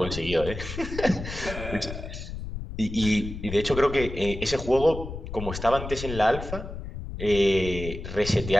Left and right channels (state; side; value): noise; left; rumble, 8 dB below the sound